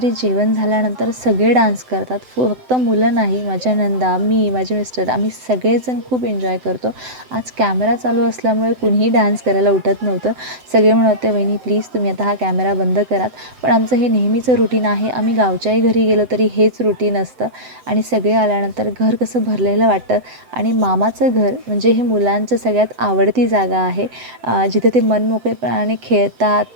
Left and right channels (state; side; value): late; left; 7.9 ms